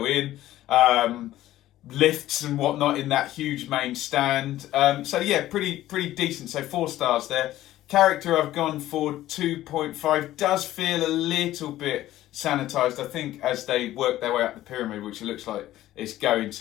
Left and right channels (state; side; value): quieter; right; 14.5 dB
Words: in. lifts and whatnot in that huge main stand. So yeah, pretty decent. So 4 stars there. Character, I've gone for 2.5. Does feel a little bit sanitised. I think as they work their way up the pyramid, which it looks like it's going